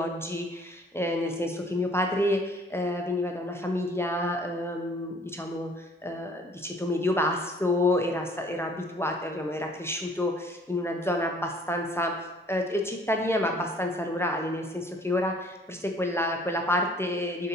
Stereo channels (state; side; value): normal; both; correlation 0.56